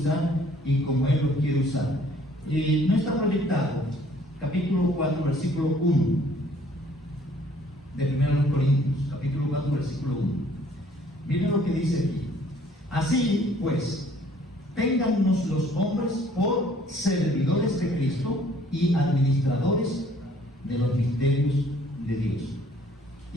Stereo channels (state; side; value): normal; both; correlation 0.59